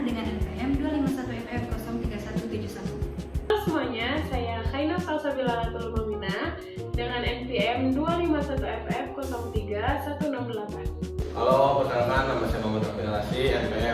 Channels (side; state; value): both; identical; correlation 1.00